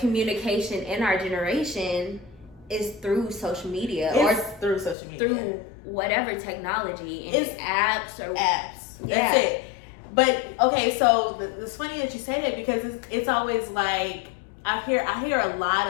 in our generation is through social media, It's or through social media. through whatever technology, and It's apps or apps. Yeah. That's it. But okay, so it's funny that you say that, because it's always like I hear a lot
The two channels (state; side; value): drops out; right; at 5.0 s